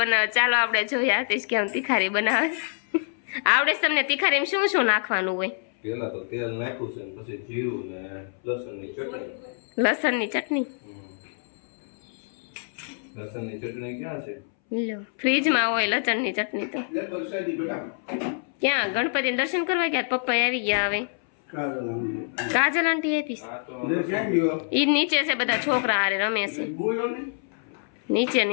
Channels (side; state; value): right; silent; 61 dB below the other